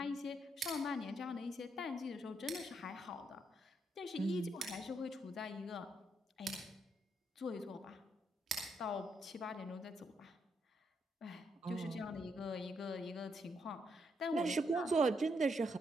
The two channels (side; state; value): both; normal; correlation 0.77